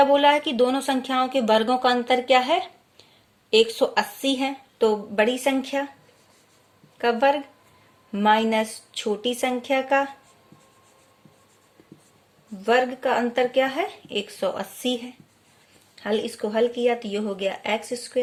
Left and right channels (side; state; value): both; identical; correlation 1.00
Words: बोला है कि दोनों संख्याओं के वर्गों का अंतर क्या है? 180 है। तो बड़ी संख्या का वर्ग माइनस छोटी संख्या का वर्ग का अंतर क्या है? 180 है। इसको हल किया तो ये हो गया